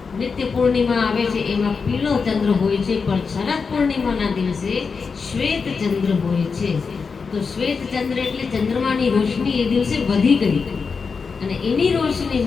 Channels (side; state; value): right; quieter; 5.2 dB